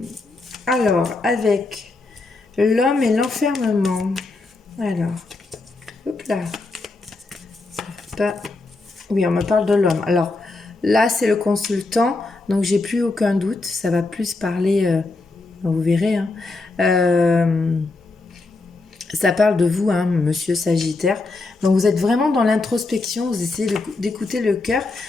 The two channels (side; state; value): right; quieter; 3.4 dB